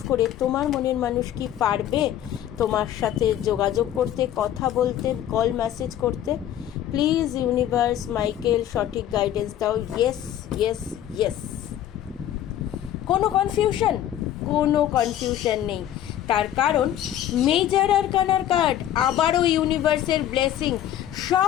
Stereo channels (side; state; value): right; quieter; 11.5 dB